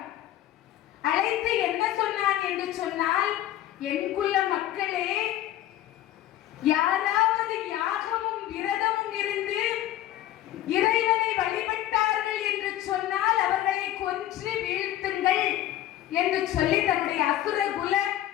அழைத்து என்ன சொன்னான் என்று சொன்னால், என் குல மக்களே, யாராவது யாகமும் விரதமும் இருந்து இறைவனை வழிபட்டார்கள் என்று சொன்னால் அவர்களை கொன்று வீழ்த்துங்கள் என்று சொல்லி தன்னுடைய அசுரகுல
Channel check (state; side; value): quieter; right; 13.2 dB